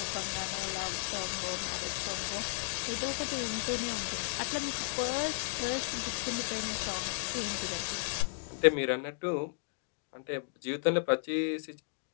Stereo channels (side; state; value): right; silent; digital silence